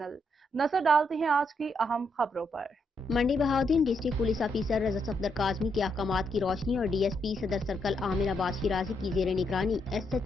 नजर डालते हैं आज की अहम खबरों पर। मंडी बहाउद्दीन डिस्ट्रिक्ट पुलिस ऑफिसर रजा सफदर काजमी के अहकामात की रोशनी और DSP सदर सर्कल आमिर अब्बास शिराजी की जेर निगरानी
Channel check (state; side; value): normal; both; correlation 0.78